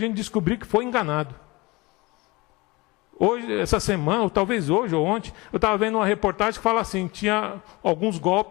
descobrir que foi enganado. Hoje, essa semana, ou talvez hoje ou ontem, eu estava vendo uma reportagem que fala assim, tinha alguns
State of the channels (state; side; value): quieter; right; 23.4 dB